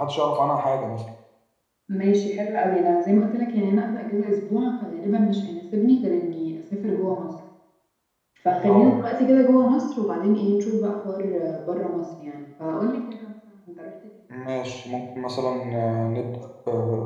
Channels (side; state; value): both; identical; correlation 1.00